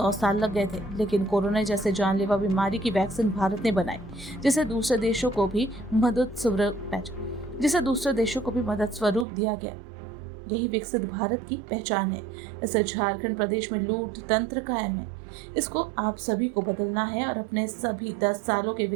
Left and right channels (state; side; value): drops out; left; at 9.2 s